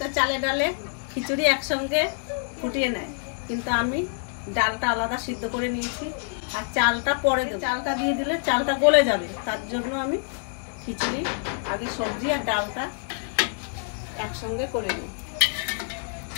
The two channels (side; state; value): right; silent; 61 dB below the other